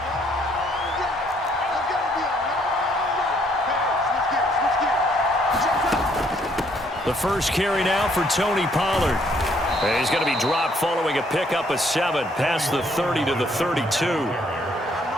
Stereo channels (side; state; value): both; normal; correlation 0.67